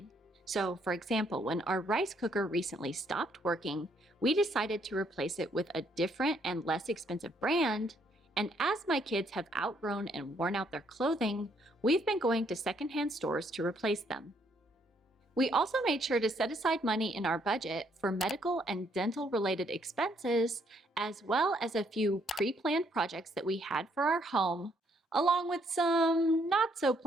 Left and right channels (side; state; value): both; normal; correlation 0.70